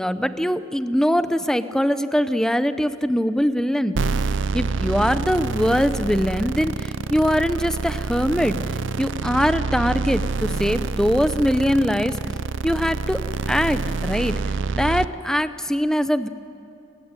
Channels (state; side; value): normal; both; correlation 0.90